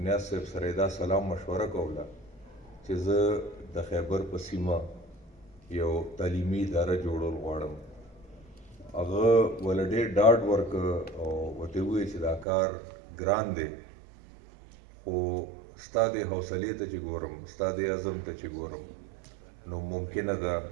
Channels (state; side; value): drops out; left; at 12.5 s